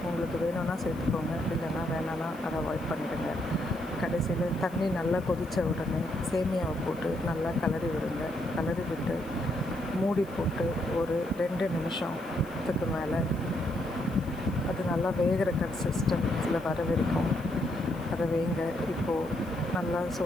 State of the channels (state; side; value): noise; left; hiss, 25 dB below the sound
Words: உங்களுக்கு வேணும்னா சேர்த்துக்கோங்க, இல்லைன்னா வேணான்னா அதை அவாய்ட் பண்ணிடுங்க. கடைசியில் தண்ணி நல்லா கொதித்த உடனே சேமியாவை போட்டு நல்லா கிளறி விடுங்க. கிளறி விட்டு மூடி போட்டு ஒரு 2 நிமிஷத்துக்கு மேலே அது நல்லா வேகிற கன்சிஸ்டன்சியில் வர வரைக்கும் அதை வேங்க. இப்போது நல்லா